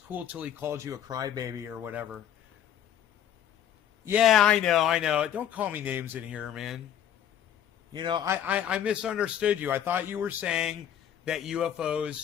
till he called you a crybaby or whatever. Yeah, I know. Don't call me names in here, man. I misunderstood you. I thought you were saying that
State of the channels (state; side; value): quieter; right; 10.0 dB